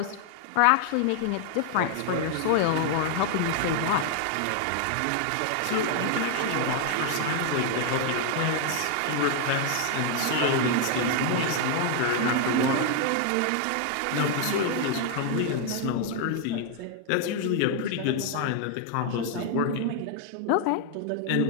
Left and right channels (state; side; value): different; both; correlation 0.00